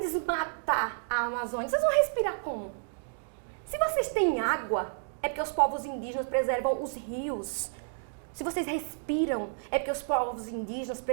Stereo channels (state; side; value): silent; left; 57 dB below the other